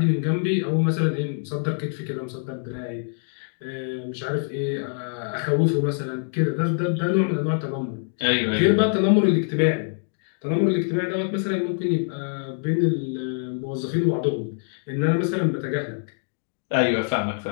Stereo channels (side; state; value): right; silent; digital silence